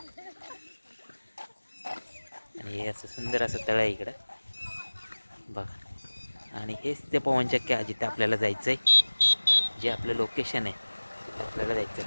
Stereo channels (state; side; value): inverted; both; correlation -1.00